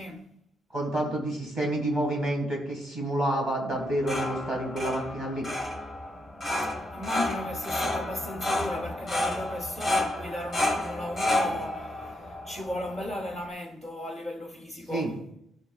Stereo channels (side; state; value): both; normal; correlation 0.79